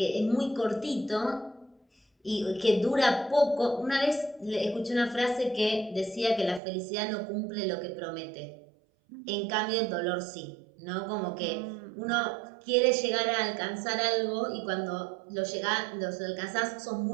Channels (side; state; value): left; drops out; at 6.6 s